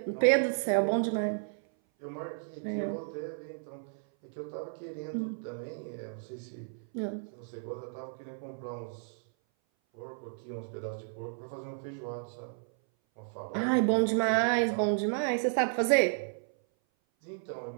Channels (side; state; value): left; silent; 56 dB below the other